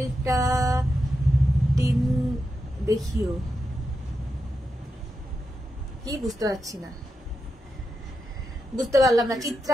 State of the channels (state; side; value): normal; both; correlation 0.87